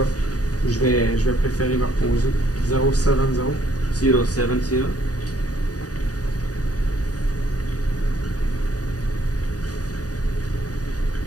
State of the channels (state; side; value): late; right; 0.68 ms